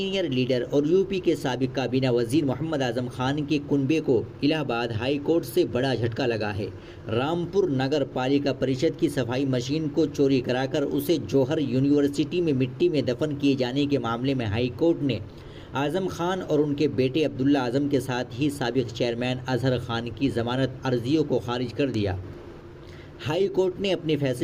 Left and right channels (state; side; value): identical; both; correlation 1.00